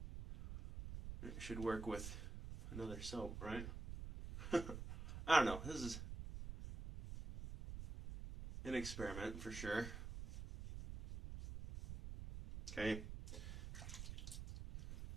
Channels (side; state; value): right; noise; rumble, 7 dB below the sound